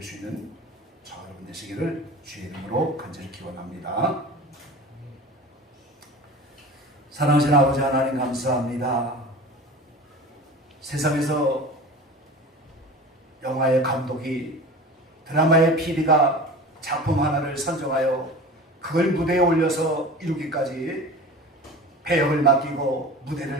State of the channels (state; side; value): normal; both; correlation 0.36